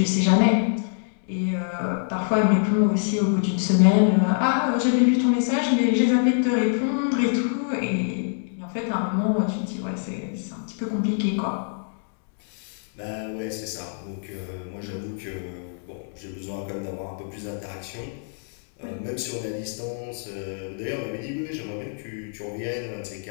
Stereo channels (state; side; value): silent; right; digital silence